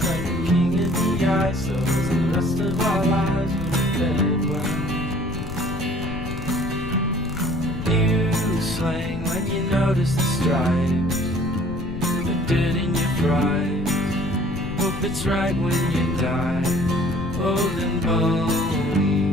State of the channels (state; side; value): noise; left; rumble, 9 dB below the sound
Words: like a king in the ice. So the rest of our lives were dead. New slang when you notice the stripes, the dirt in your fries. Hope it's right when you die, old and